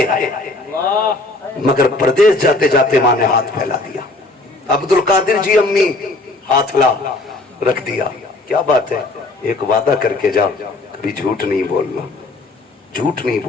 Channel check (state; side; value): quieter; right; 3.0 dB